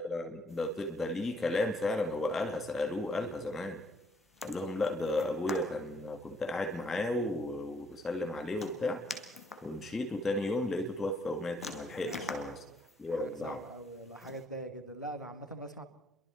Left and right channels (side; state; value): both; normal; correlation 0.68